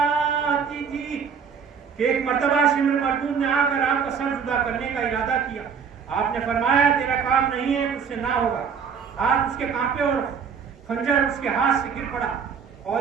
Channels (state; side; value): quieter; left; 6.6 dB